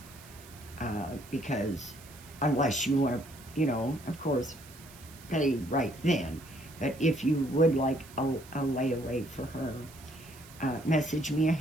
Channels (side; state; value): right; noise; hiss, 20 dB below the sound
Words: because unless you want to, of course, pay right then. But if you would like a layaway for her, message me